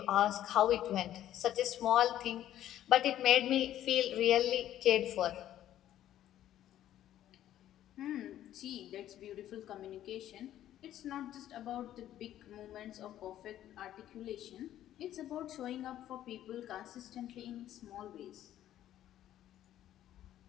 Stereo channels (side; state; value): right; quieter; 12.2 dB